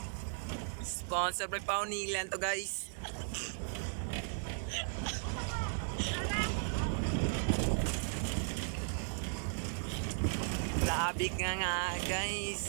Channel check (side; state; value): left; silent; digital silence